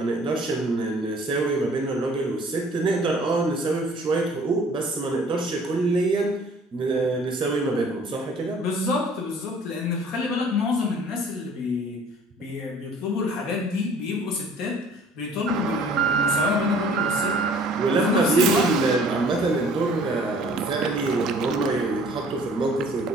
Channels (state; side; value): normal; both; correlation 0.53